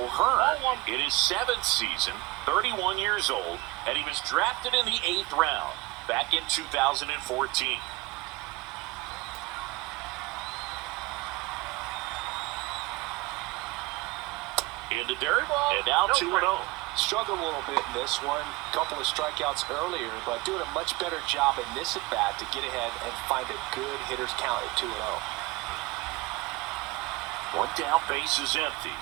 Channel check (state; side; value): quieter; left; 22.3 dB